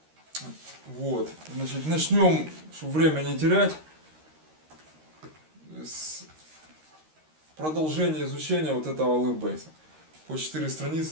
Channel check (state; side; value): late; left; 13 ms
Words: Вот. Значит, начнем, чтобы время не терять, с продолжения изучения вот этого алефбейса. По 4